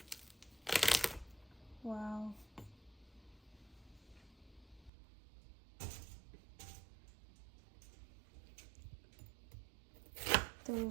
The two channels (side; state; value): left; drops out; at 4.9 s